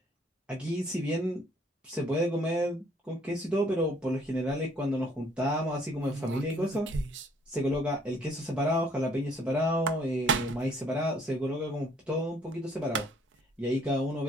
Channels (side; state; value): both; normal; correlation 0.62